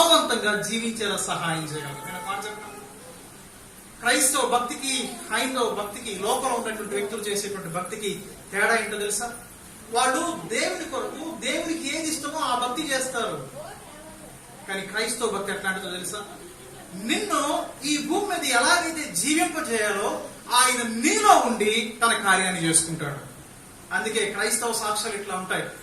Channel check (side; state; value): both; identical; correlation 1.00